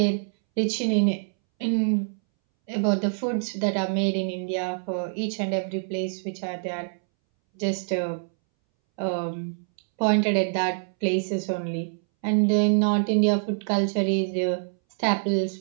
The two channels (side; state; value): left; silent; 61 dB below the other